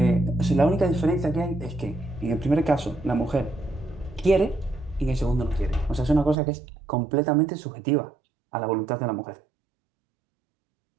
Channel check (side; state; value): left; drops out; at 6.4 s